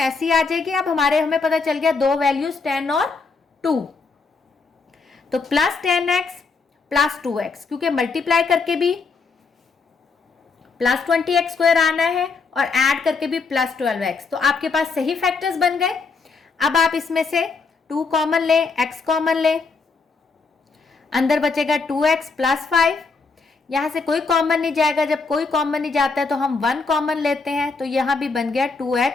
ऐसी आ जाएगी। अब हमें पता चल गया 2 वैल्यूज 10 और 2, तो प्लस 10x प्लस 2x, क्योंकि मल्टीप्लाई करके भी प्लस 20x स्क्वायर आना है और ऐड करके भी प्लस 12x। तो आपके पास सही फैक्टर्स बन गए। अब आप इसमें से 2 कॉमन लें, x कॉमन लें, अंदर बचेगा 2x प्लस 5। यहां से कोई कॉमन नहीं जाएगा, जब कोई कॉमन नहीं जाता है तो हम 1 कॉमन लेते हैं, तो यहां भी बन गया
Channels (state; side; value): quieter; right; 4.5 dB